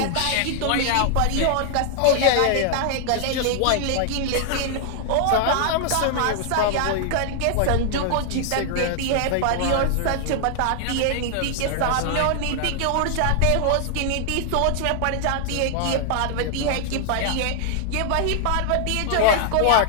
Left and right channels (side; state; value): both; different; correlation 0.00